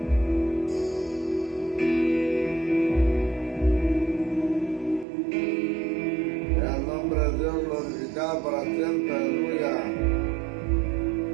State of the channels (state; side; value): drops out; left; at 5.1 s